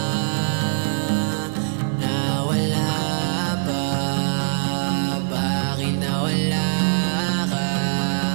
nawala pa? Bakit nawala ka?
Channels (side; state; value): left; silent; digital silence